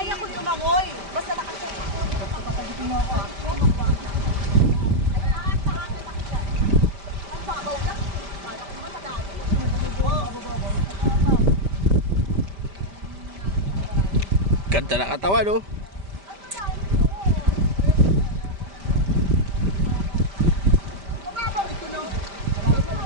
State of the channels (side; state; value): left; late; 5.1 ms